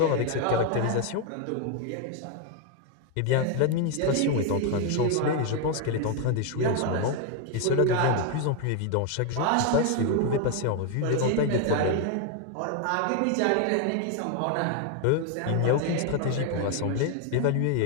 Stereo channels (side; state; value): both; different; correlation 0.01